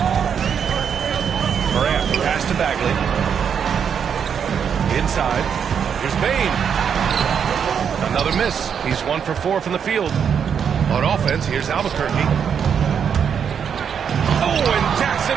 Morant, pass to Bagley. Inside, here's Bane. Another miss. He's 1 for 4 from the field. On offense, here's Albuquerque. Oh, and Jackson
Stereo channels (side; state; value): left; quieter; 7.5 dB